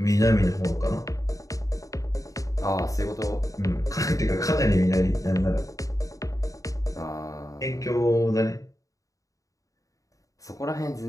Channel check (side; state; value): right; late; 0.16 ms